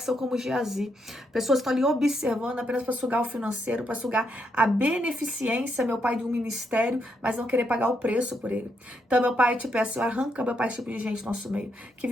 são como Geazi, pessoas que estão ali observando apenas para sugar o financeiro, para sugar a beneficência, meu Pai, de um ministério, mas não querer pagar o preço por ele. Então, meu Pai, te peço, arranca, meu Pai, esse tipo de gente do nosso meio. Que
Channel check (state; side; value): normal; both; correlation 0.78